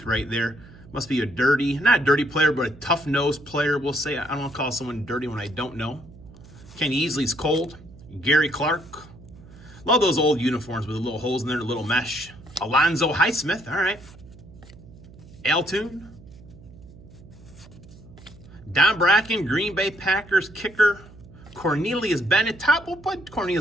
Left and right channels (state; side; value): noise; right; hum, 21 dB below the sound